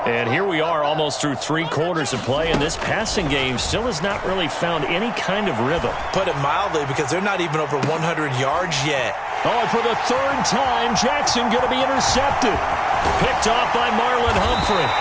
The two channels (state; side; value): identical; both; correlation 1.00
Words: And here we are almost through 3 quarters of play, and this passing game still has not really found any kind of rhythm. Put it mildly, because they're not even over 100 yards yet. Oh, and for the 3rd time, Jackson going to be intercepted. Picked off by Marlon Humphrey.